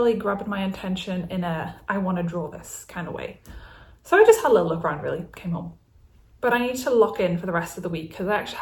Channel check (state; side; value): identical; both; correlation 1.00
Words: grabbed my attention in a, I want to draw this kind of way. So I just had a little look around, really, came home. But I need to lock in for the rest of the week because I actually